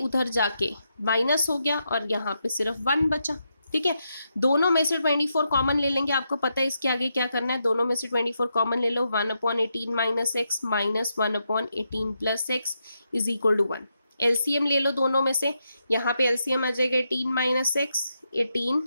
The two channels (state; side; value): inverted; both; correlation -0.83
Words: जाके माइनस हो गया और यहाँ पे सिर्फ 1 बचा। ठीक है, दोनों में से 24 कॉमन ले लेंगे, आपको पता है इसके आगे क्या करना है, दोनों में से 24 कॉमन ले लो, 1/18 minus x minus 1/18 plus x is equal to 1। LCM ले लो दोनों में से, यहाँ पे एलसीएम आ जाएगा 18 माइनस एक्स 18